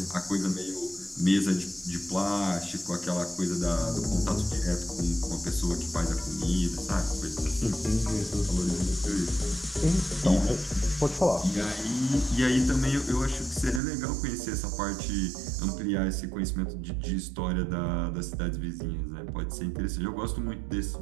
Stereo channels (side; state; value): left; drops out; at 13.8 s